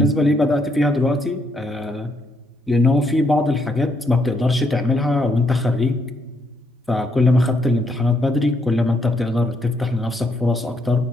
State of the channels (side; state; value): both; normal; correlation 0.75